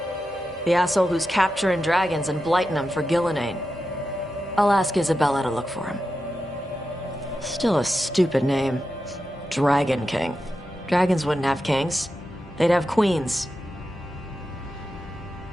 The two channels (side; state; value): both; normal; correlation 0.90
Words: the asshole who's capturing dragons and blighting them for Gillenane. I'll ask Isabella to look for him. Still a stupid name. Dragon King. Dragons wouldn't have kings. They'd have queens.